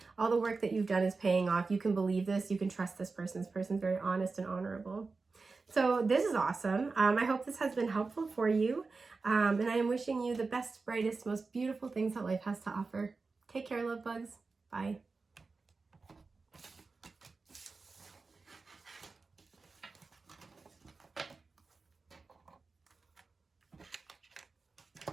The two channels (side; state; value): left; quieter; 4.1 dB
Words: all the work that you've done is paying off. You can believe this. You can trust this person. This person's very honest and honorable. So this is awesome. I hope this has been helpful for you. And I am wishing you the best, brightest, most beautiful things that life has to offer. Take care, love bugs. Bye.